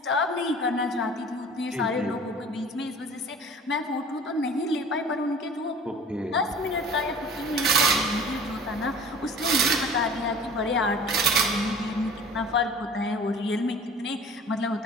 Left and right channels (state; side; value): normal; both; correlation 0.44